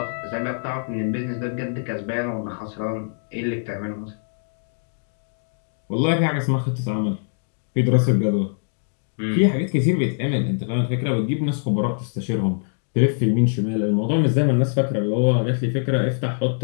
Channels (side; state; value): right; silent; digital silence